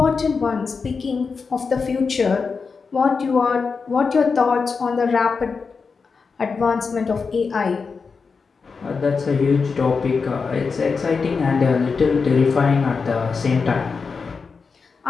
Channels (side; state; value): right; quieter; 5.0 dB